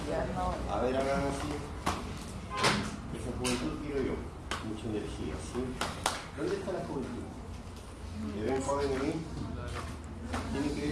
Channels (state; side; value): identical; both; correlation 1.00